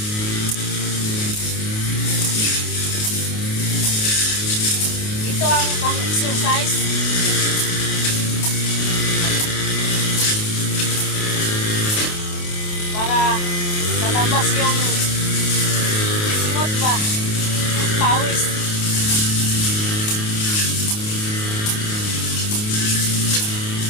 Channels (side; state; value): right; late; 28 ms